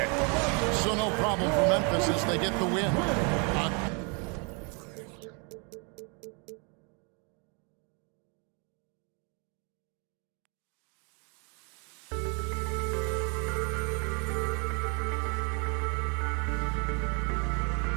them. So no problem for Memphis as they get the win.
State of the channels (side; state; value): left; quieter; 34.5 dB